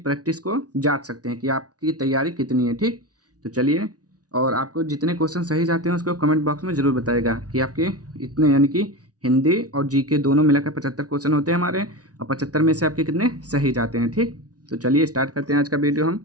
प्रैक्टिस को जांच सकते हैं कि आपकी तैयारी कितनी है। ठीक, तो चलिए, और आपको जितने क्वेश्चन सही जाते हैं उसको कमेंट बॉक्स में ज़रूर बताएगा कि आपके इतने, यानी कि हिंदी और जीके दोनों मिलाकर 75 क्वेश्चन होते हैं हमारे, और 75 में से आपके कितने सही जाते हैं। ठीक, तो चलिए स्टार्ट करते हैं आज का वीडियो हम।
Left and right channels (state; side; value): late; left; 0.68 ms